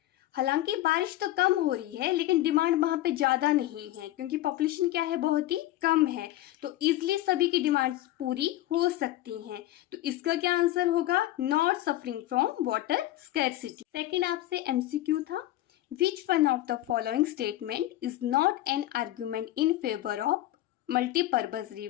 हालांकि बारिश तो कम हो रही है लेकिन डिमांड वहाँ पे ज़्यादा नहीं है क्योंकि पॉपुलेशन क्या है? बहुत ही कम है, तो इजली सभी की डिमांड्स पूरी हो सकती हैं। तो इसका क्या आंसर होगा? Not suffering from water scarcity. Second आपसे एमसीक्यू था, which one of the following statement is not an argument in favour of multipurpose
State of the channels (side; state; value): right; quieter; 15.2 dB